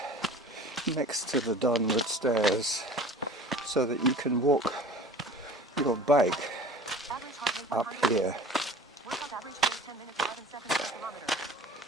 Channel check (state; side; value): normal; both; correlation 0.42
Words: next to the Donwood stairs so that you can walk your bike up here.